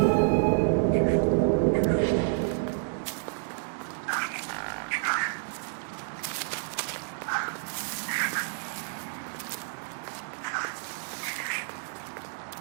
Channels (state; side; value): silent; left; digital silence